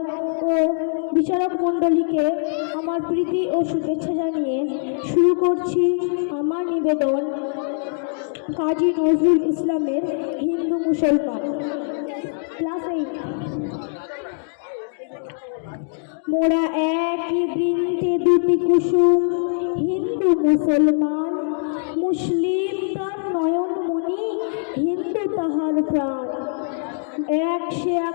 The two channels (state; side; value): silent; right; digital silence